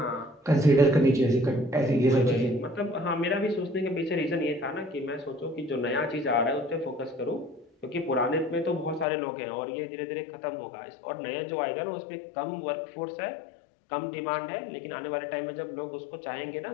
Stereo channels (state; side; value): drops out; right; at 9.1 s